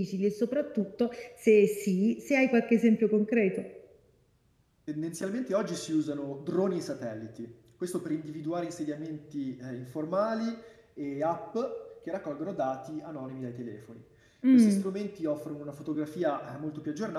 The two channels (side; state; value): both; identical; correlation 1.00